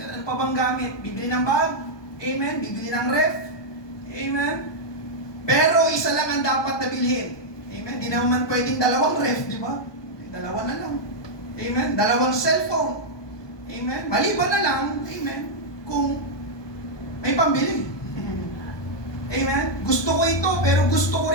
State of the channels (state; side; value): late; right; 1.2 ms